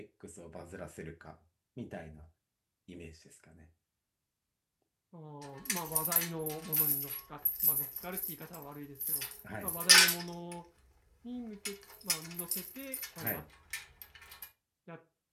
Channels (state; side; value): identical; both; correlation 1.00